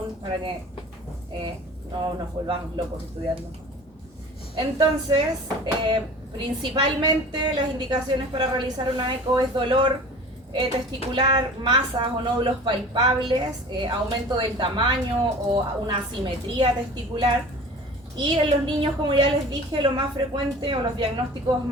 para que no nos volvamos locos estudiando. Entonces, principalmente las indicaciones para realizar una eco es dolor testicular, masas o nódulos palpables, aumento del tamaño o una asimetría testicular. Y en los niños, como ya les dije, lo más frecuente o los diagnósticos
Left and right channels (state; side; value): normal; both; correlation 0.41